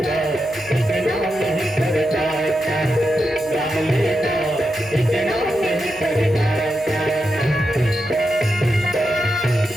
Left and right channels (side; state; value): left; noise; hum, 24 dB below the sound